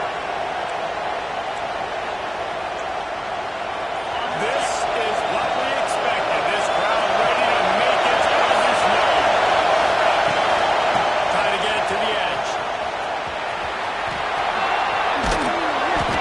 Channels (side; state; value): both; identical; correlation 1.00